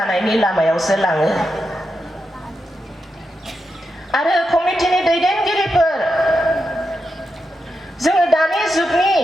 लामायावसो लाङो आरो कमिटिनि दैदेनगिरिफोर जोङो दानि जुगनि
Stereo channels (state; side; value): normal; both; correlation 0.86